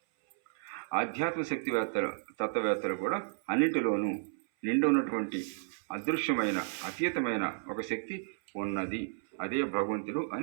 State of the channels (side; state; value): left; silent; 56 dB below the other